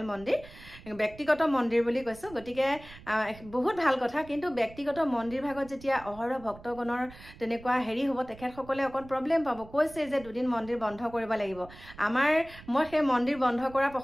মন্দিৰ ব্যক্তিগত মন্দিৰ বুলি কৈছোঁ গতিকে বহুত ভাল কথা কিন্তু ব্যক্তিগত মন্দিৰ ভাগত যেতিয়া অহৰহ ভক্তগণৰ তেনেকুৱা হেৰি হ'ব তেখেতসকলে অকণ প্ৰব্লেম পাব কৈছে যে দুদিন মন্দিৰ বন্ধ কৰিব লাগিব মই সেই মন্দিৰ বন্ধ কৰা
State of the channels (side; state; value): right; noise; rumble, 19 dB below the sound